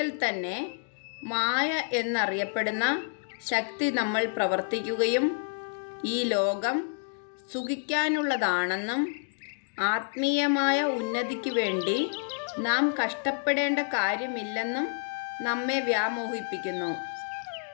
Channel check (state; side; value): silent; right; digital silence